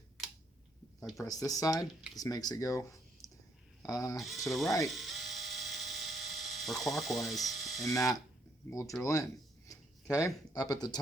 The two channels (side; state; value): both; normal; correlation 0.71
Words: I press this side, this makes it go to the right or clockwise, and that will drill in. Okay, up at the